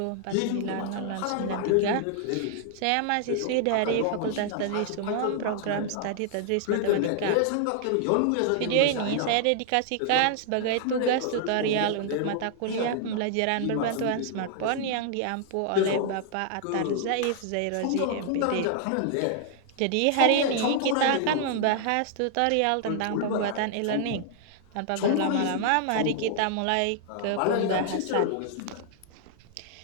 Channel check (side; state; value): both; different; correlation 0.00